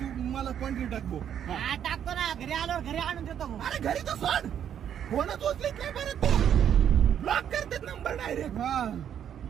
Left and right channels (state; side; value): quieter; left; 9.3 dB